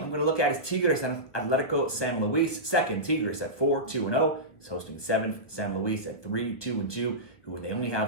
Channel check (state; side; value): late; right; 1.4 ms